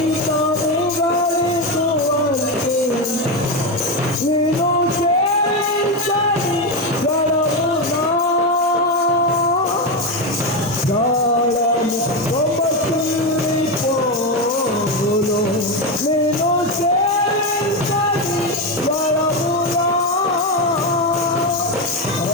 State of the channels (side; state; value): both; normal; correlation 0.11